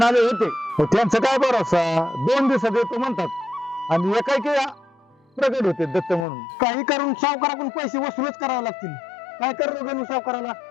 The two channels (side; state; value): right; drops out; at 6.2 s